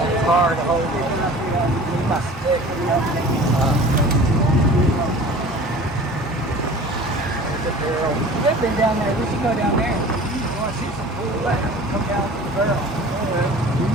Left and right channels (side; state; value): both; normal; correlation 0.42